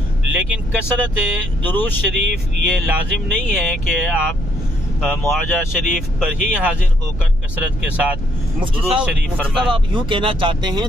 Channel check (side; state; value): right; noise; hum, 8 dB below the sound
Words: लेकिन कसरत दुरूद शरीफ ये लाजिम नहीं है कि आप मुआजा शरीफ पर ही हाजिर होकर कसरत के साथ दुरूद शरीफ फरमाएं। आप यूँ कहना चाहते